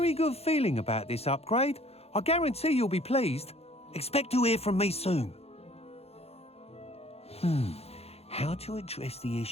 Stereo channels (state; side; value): late; right; 0.29 ms